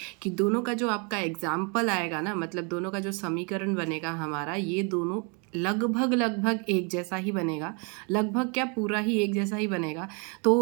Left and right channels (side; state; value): left; quieter; 34.7 dB